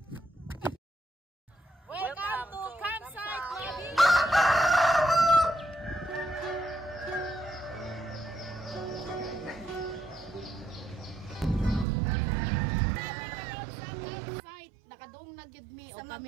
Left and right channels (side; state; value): left; drops out; at 11.9 s